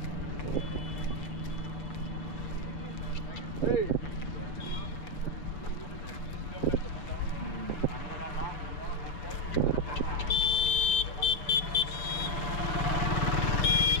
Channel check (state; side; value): late; right; 7.1 ms